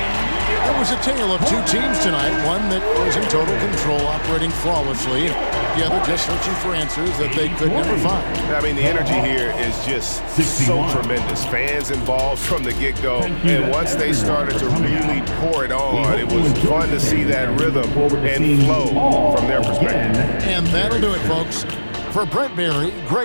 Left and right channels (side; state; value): both; inverted; correlation -1.00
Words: It was a tale of two teams tonight, one that was in total control, operating flawlessly, the other just searching for answers that they could never find. I mean, the energy here is just so tremendous. Fans involved from the get-go, and once they started to really pour it on, it was fun to see that rhythm and flow from their perspective. And that'll do it, folks. For Brent Barry,